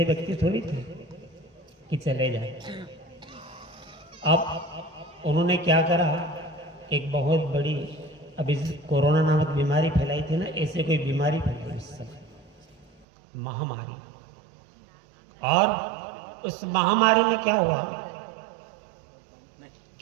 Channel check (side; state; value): left; drops out; at 13.1 s